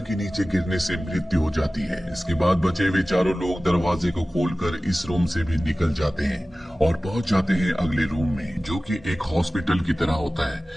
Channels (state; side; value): normal; both; correlation 0.97